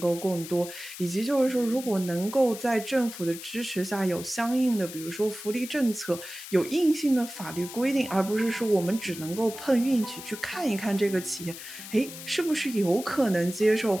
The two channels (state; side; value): noise; left; hiss, 12 dB below the sound